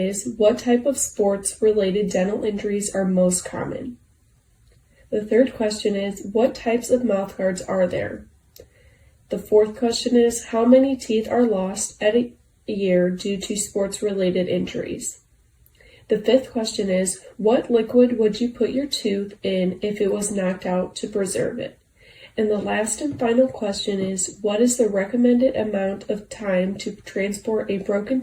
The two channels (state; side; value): identical; both; correlation 1.00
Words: what type of sports-related dental injuries are most common? The third question is, what types of mouthguards are there? The fourth question is, how many teeth are lost at a year due to sports-related injuries? The fifth question is, what liquid would you put your tooth in if it was knocked out to preserve it? And the last and final question is, what is the recommended amount of time to transport a broken